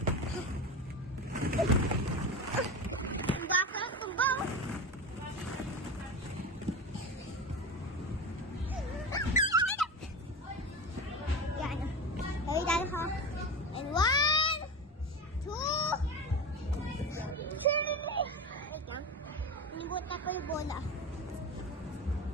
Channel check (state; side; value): normal; both; correlation 0.25